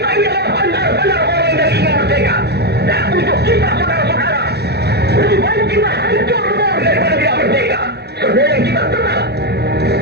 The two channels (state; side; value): late; left; 0.48 ms